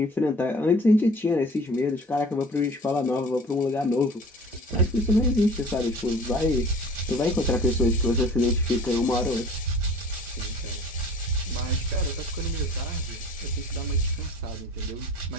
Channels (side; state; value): both; normal; correlation 0.45